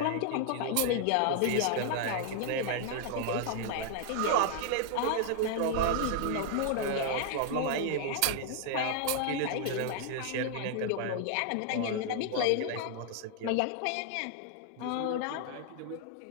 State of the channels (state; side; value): different; both; correlation 0.00